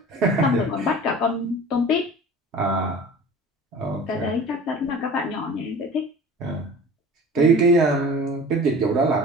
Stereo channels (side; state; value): both; normal; correlation 0.41